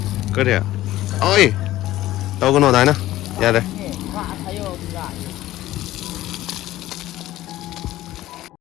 그래. 어이. 너거 너 나이나. 야 돼.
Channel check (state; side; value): quieter; right; 15.2 dB